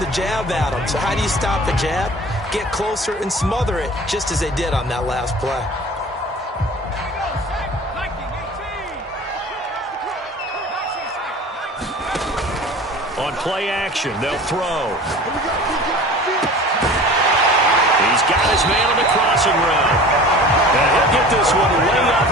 jab at him. So how do you stop the jab? Get closer and smother it, just as they did on that last play. On play action, they'll throw. He's got his man on the crossing route. And he'll get this one way up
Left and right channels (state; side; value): normal; both; correlation 0.41